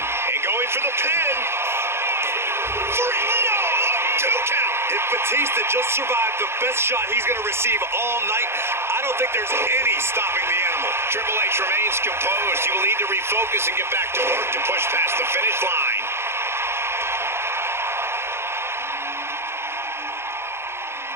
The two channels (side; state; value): left; late; 0.12 ms